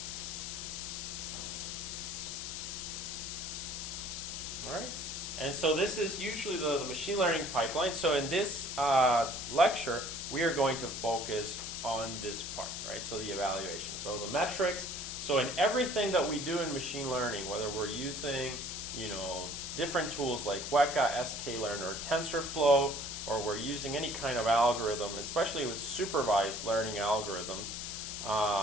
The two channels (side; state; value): left; noise; hiss, 6 dB below the sound